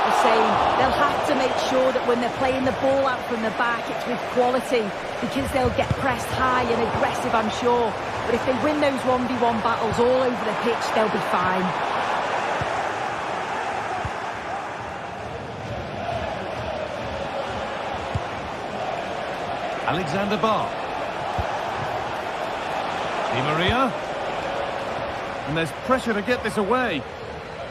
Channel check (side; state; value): both; identical; correlation 1.00